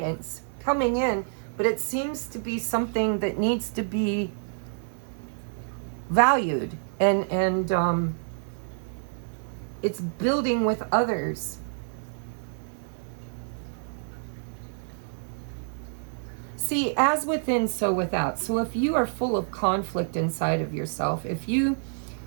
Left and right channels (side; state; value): left; silent; digital silence